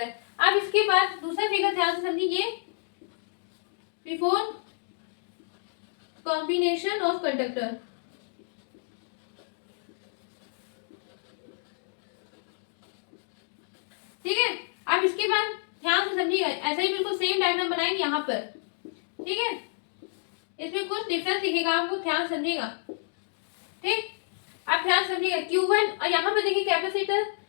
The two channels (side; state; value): right; silent; digital silence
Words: है। अब इसके बाद दूसरा फिगर ध्यान से समझिए, ये बिफोर कॉम्बिनेशन ऑफ कंडक्टर। ठीक है, अब इसके बाद ध्यान से समझिएगा, ऐसा ही बिल्कुल सेम डायग्राम बनाएंगे यहाँ पर। ठीक है, इसमें कुछ डिफरेंस दिखेगा आपको, ध्यान समझिएगा। ठीक, आप ध्यान समझिएगा Q1 और यहाँ पर देखिए कैपेसिटर